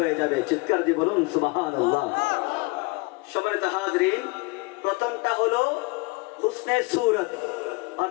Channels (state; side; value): quieter; right; 26.4 dB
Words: যাবে। চিৎকার দিয়ে বলুন সুবহানাল্লাহ। সম্মানিত হাজিরিন, প্রথমটা হলো হুসনে সূরত,